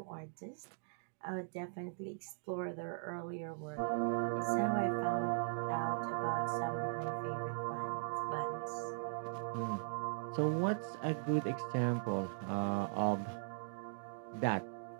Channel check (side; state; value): left; silent; digital silence